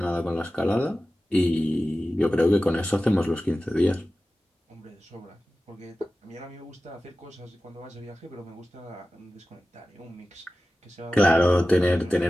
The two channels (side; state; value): both; normal; correlation 0.95